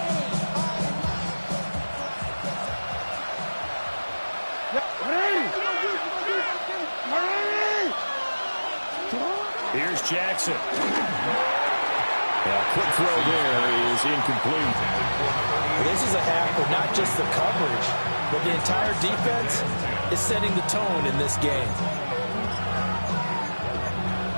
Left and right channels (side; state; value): both; inverted; correlation -1.00